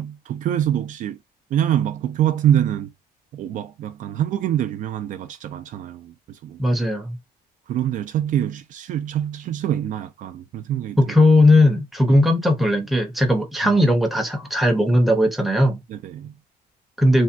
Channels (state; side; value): normal; both; correlation 0.77